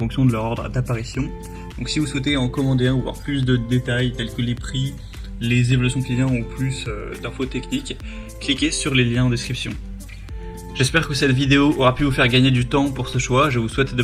de leur ordre d'apparition. Donc si vous souhaitez en commander un ou voir plus de détails tels que les prix, les évaluations clients ou plus d'infos techniques, cliquez sur les liens en description. J'espère que cette vidéo aura pu vous faire gagner du temps pour ce choix. Je vous souhaite de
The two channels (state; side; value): identical; both; correlation 1.00